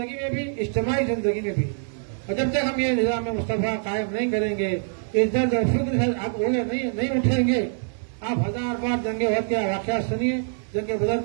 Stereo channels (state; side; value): silent; left; digital silence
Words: میں بھی، اجتماعی زندگی میں بھی. اور جب تک ہم یہ نظام مصطفیٰ قائم نہیں کریں گے، اس درد اور فکر سے آپ نہیں اٹھیں گے. آپ 1000 بار جنگ احد کے واقعات سنیے، جنگ بدر